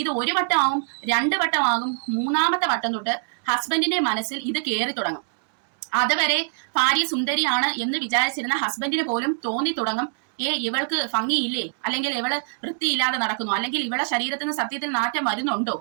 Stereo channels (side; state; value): left; silent; digital silence